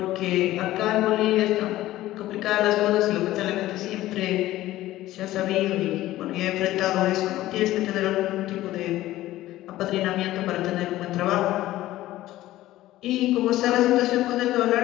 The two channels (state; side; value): quieter; right; 15.5 dB